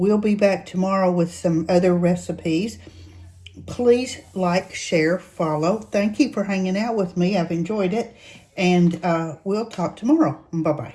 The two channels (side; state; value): both; identical; correlation 1.00